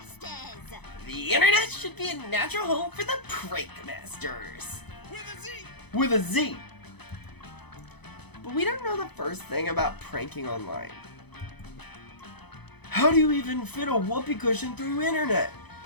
The internet should be a natural home for the Prank Masters. With a Z! With a Z. But we don't know the first thing about pranking online. How do you even fit a whoopee cushion through internet?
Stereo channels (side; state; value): right; late; 0.99 ms